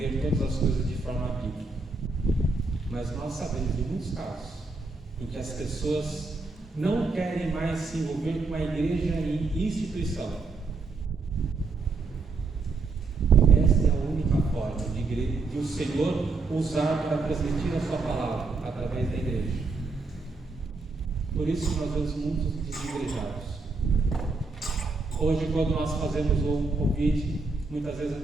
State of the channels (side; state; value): left; quieter; 3.9 dB